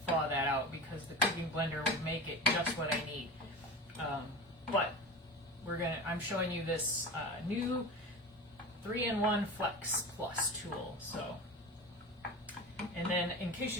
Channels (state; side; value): normal; both; correlation 0.29